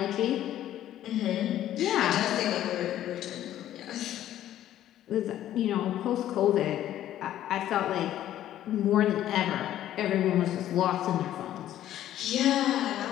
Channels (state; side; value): quieter; right; 12.4 dB